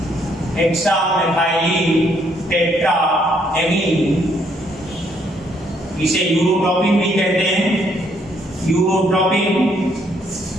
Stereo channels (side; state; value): both; normal; correlation 0.69